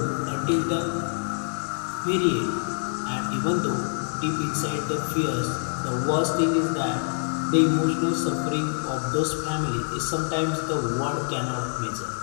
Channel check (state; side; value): silent; right; digital silence